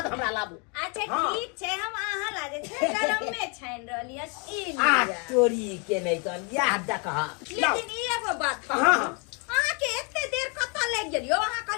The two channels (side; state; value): right; quieter; 34.5 dB